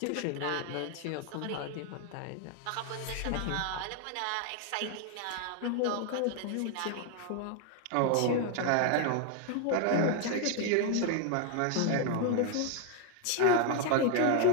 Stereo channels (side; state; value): both; different; correlation 0.00